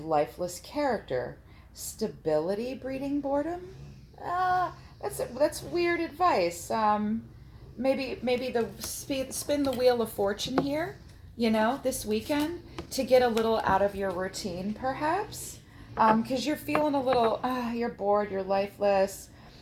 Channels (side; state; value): both; identical; correlation 1.00